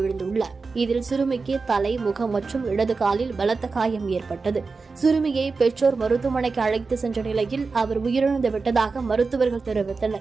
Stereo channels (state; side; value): quieter; left; 4.3 dB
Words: இதில் சிறுமிக்கு தலை, முகம் மற்றும் இடது காலில் பலத்த காயம் ஏற்பட்டது. சிறுமியை பெற்றோர் மருத்துவமனைக்கு அழைத்து சென்ற நிலையில் அவர் உயிரிழந்து விட்டதாக மருத்துவர்கள்